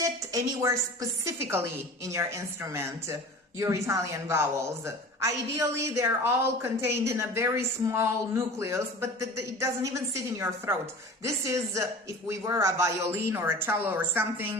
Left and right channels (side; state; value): both; normal; correlation 0.39